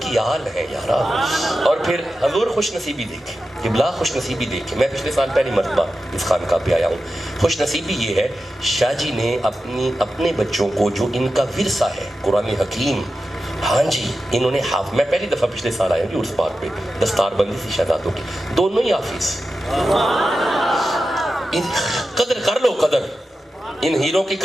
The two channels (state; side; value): normal; both; correlation 0.92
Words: کی آل ہے یارا. اور پھر حضور خوش نصیبی دیکھے, قبلہ خوش نصیبی دیکھے. میں پچھلے سال پہلی مرتبہ اس خانقاہ پہ آیا ہوں. خوش نصیبی یہ ہے, شاہ جی نے اپنے بچوں کو جو ان کا ورثہ ہے قرآن حکیم, ہاں جی, انہوں نے میں پہلی دفعہ پچھلے سال آیا ہوں عرس پاک پہ, دستار بندی تھی شہزادوں کی, دونوں ہی حافظ. قدر کر لو, قدر, ان ہیروں کی